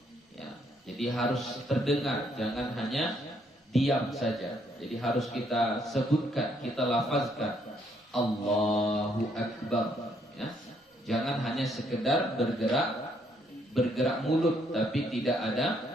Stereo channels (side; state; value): both; normal; correlation 0.70